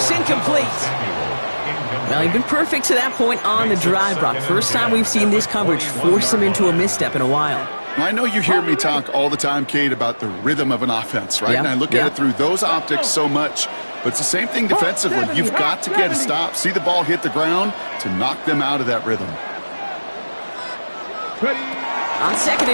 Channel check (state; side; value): inverted; both; correlation -1.00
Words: Incomplete. Well, he's been perfect to that point on the drive, Brock. First time we've seen this coverage force him into a misstep in a while. I know you hear me talk all the time, Kate, about the rhythm of an offense, right? And I look at it through those optics so much. But it's the same thing defensively. You've got to get a stop, see the ball hit the ground to knock them out of that rhythm. On 2nd